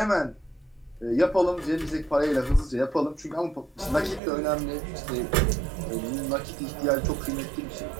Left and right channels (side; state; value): left; drops out; at 4.2 s